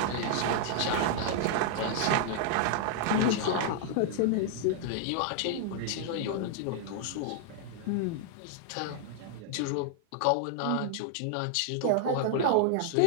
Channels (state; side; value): different; both; correlation 0.00